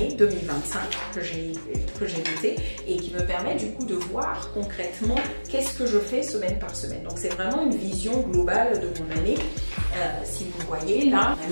2025 que j'ai noté et qui me permet du coup de voir concrètement qu'est-ce que je fais semaine par semaine. Donc c'est vraiment une vision globale de mon année. Si vous voyez là,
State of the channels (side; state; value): both; inverted; correlation -1.00